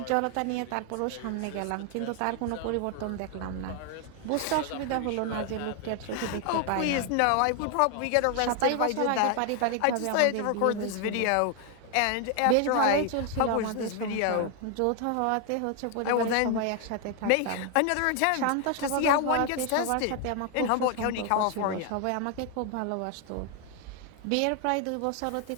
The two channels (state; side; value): different; both; correlation 0.01